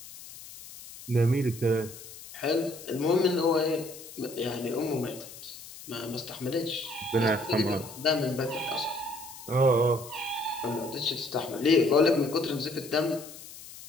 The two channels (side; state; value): left; noise; hiss, 15 dB below the sound